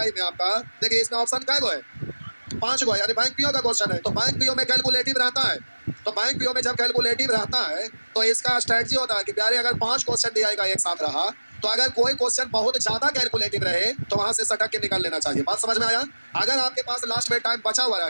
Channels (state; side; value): inverted; both; correlation -1.00